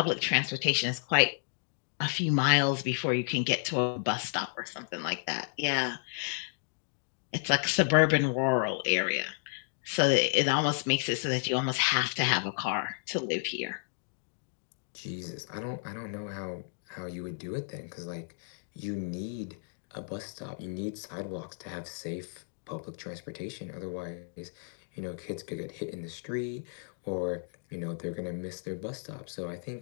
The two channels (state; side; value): silent; right; digital silence